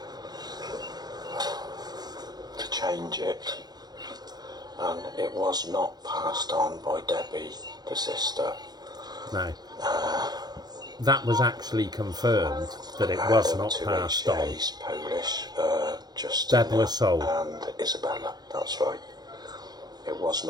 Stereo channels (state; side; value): late; left; 0.19 ms